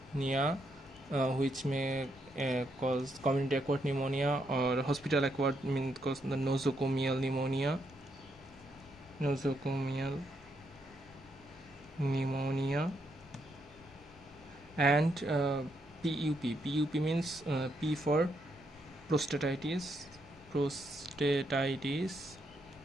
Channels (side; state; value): both; normal; correlation 0.78